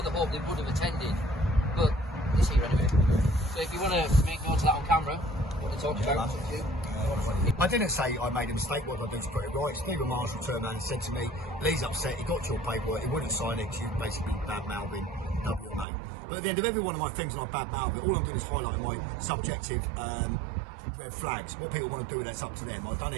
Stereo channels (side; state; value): left; drops out; at 15.9 s